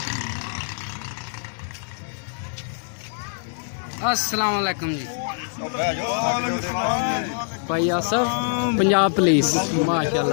अस्सलाम वालेकुम जी भाई आसफ पंजाब पुलिस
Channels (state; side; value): silent; right; digital silence